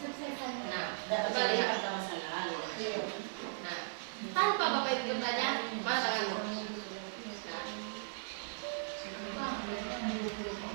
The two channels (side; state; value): left; silent; digital silence